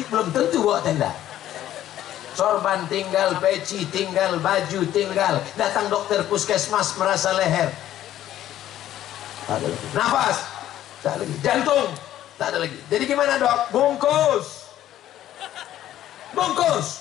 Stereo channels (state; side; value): quieter; right; 12.5 dB